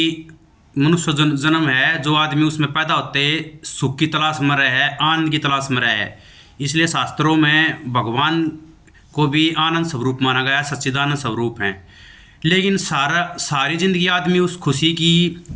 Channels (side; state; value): both; identical; correlation 1.00